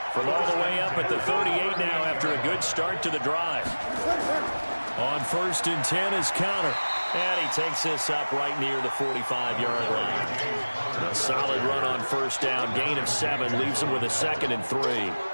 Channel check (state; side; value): inverted; both; correlation -1.00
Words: From all the way up at the 38 now after a good start to the drive. On 1st and 10 is Connor. And he takes this up right near the 45-yard line. A solid run on 1st down. Gain of 7 leaves him with a 2nd and 3.